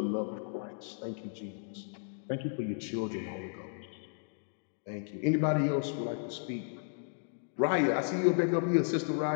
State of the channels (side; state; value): right; silent; digital silence